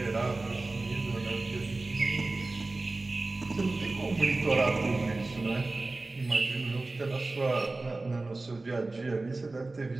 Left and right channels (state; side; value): quieter; left; 3.2 dB